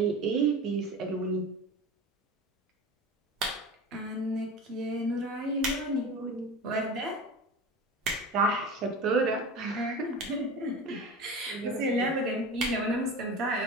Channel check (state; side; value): normal; both; correlation 0.32